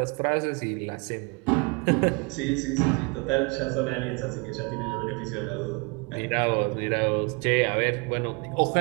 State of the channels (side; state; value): left; quieter; 30.6 dB